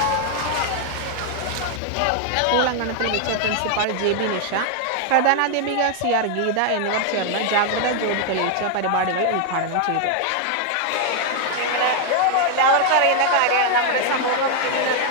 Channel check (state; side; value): different; both; correlation 0.00